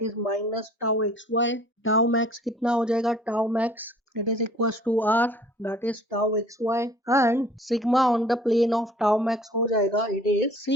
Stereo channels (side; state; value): both; normal; correlation 0.52